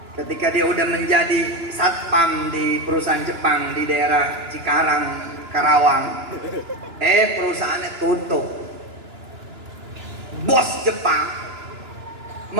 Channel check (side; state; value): left; late; 2.9 ms